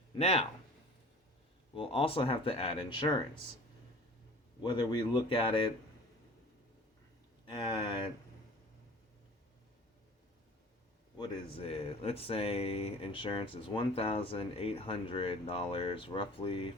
Now, we'll also have to add insurance. Whether we look at it at, what is it? Let's say insurance is $1,800 roughly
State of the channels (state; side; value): normal; both; correlation 0.43